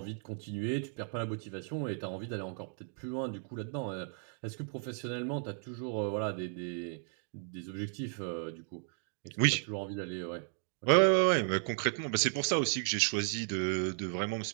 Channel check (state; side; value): silent; left; 55 dB below the other